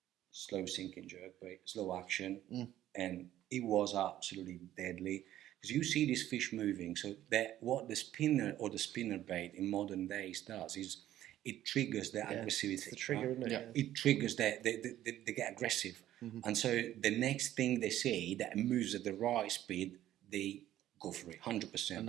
Slow sinking jerkbait, slow action, and it was absolutely deadly. Because you see this fish moving, so that what the spinner or the spinner bait in modern days does is it triggers their aggressivity. It's the trigger, isn't it? Yeah. Yeah. It triggers that they get aggressive, and so the next thing they see that moves at the right speed, they go for it 100%.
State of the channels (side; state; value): left; quieter; 12.9 dB